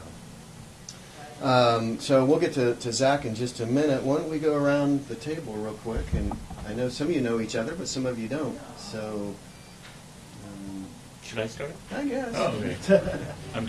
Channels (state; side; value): identical; both; correlation 1.00